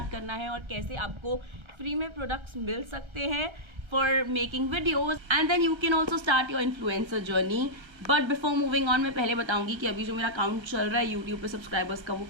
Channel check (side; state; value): left; late; 1.3 ms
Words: करना है और कैसे आपको फ्री में प्रोडक्ट्स मिल सकते हैं for making videos, and then you can also start your influencer journey. But before moving on, मैं पहले बताऊंगी कि अभी जो मेरा काउंट चल रहा है YouTube पे सब्सक्राइबर्स का वो